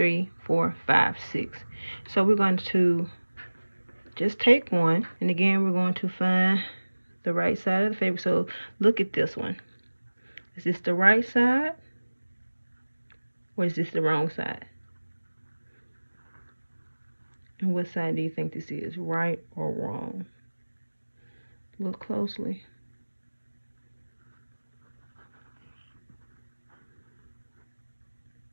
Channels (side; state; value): both; inverted; correlation -1.00